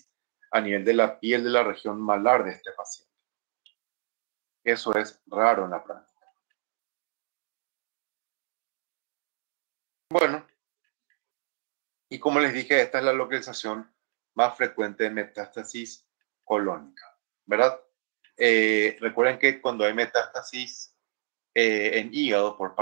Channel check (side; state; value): left; silent; digital silence